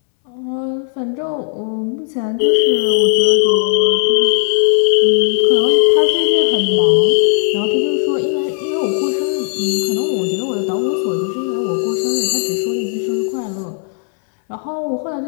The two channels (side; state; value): right; silent; 69 dB below the other